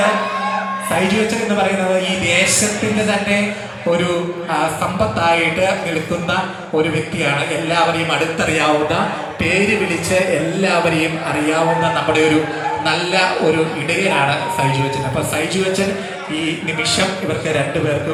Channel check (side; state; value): both; identical; correlation 1.00